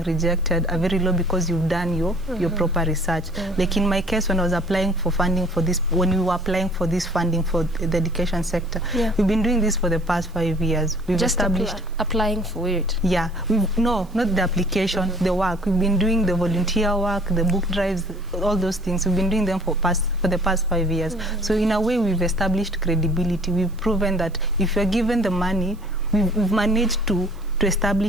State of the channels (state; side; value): noise; right; hiss, 29 dB below the sound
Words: rejected are very low because you've done your proper research. Like in my case, when I was applying for funding for this, when we were applying for this funding for the education sector, we've been doing this for the past 5 years. We've just established applying for it. Yeah, no, not the application, the work. We've been doing the volunteer work, the book drives, all those things. We've been doing them for the past 5 years. So in a way, we've established credibility. We've proven that if you're given the money, we've managed to